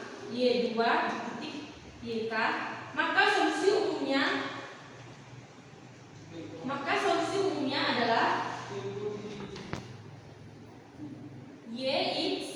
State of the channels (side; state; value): both; identical; correlation 1.00